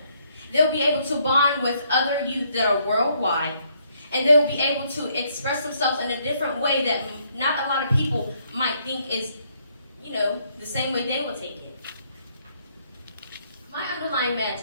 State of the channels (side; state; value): both; inverted; correlation -0.70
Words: They'll be able to bond with other youth that are worldwide, and they'll be able to express themselves in a different way that not a lot of people might think is, the same way they will take it. My underlying